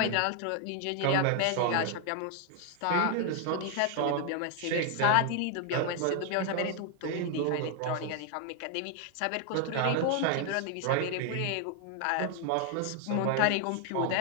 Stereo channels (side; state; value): both; different; correlation 0.00